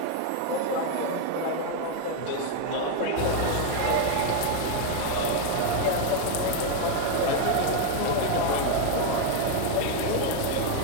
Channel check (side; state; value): both; different; correlation 0.01